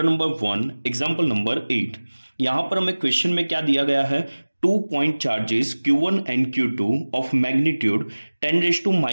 number 1 example number 8। यहां पर हमें क्वेश्चन में क्या दिया गया है, 2 point charges Q1 and Q2 of magnitude 10 raised to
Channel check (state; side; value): inverted; both; correlation -1.00